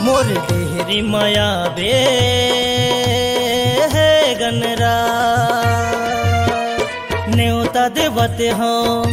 मोर डेहरी माया बे हे गणरा। न्योता देवते हो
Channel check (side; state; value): both; identical; correlation 1.00